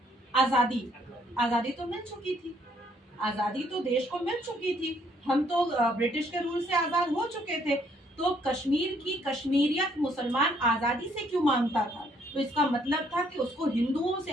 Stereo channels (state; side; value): normal; both; correlation 0.67